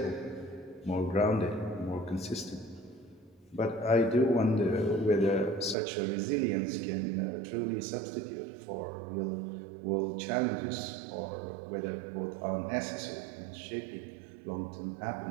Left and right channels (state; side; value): drops out; left; at 5.8 s